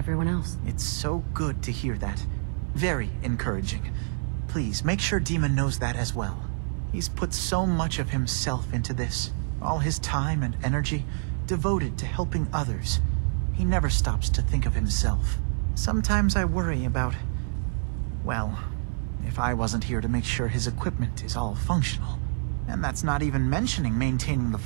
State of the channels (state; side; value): silent; left; digital silence